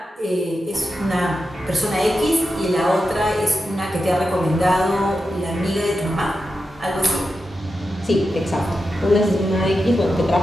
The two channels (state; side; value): normal; both; correlation 0.89